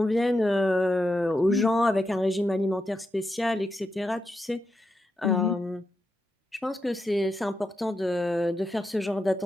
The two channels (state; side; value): normal; both; correlation 0.86